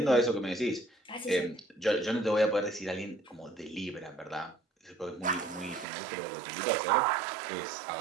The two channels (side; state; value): left; drops out; at 5.9 s